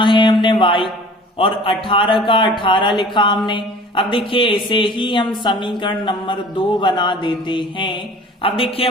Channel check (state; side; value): normal; both; correlation 0.46